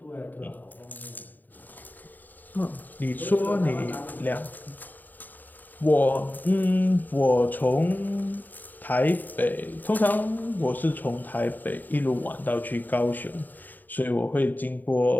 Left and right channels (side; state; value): right; late; 0.087 ms